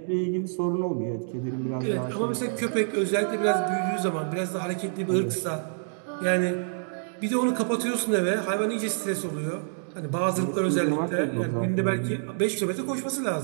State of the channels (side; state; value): left; silent; digital silence